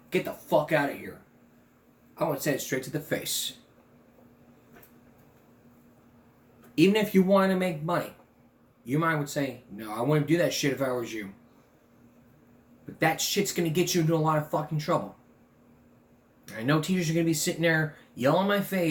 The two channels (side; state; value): both; identical; correlation 1.00